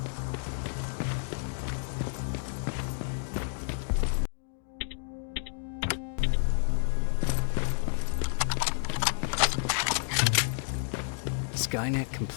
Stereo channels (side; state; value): right; silent; digital silence